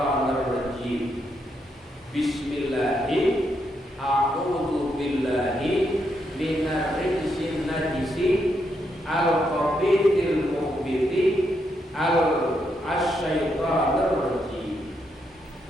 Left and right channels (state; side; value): normal; both; correlation 0.79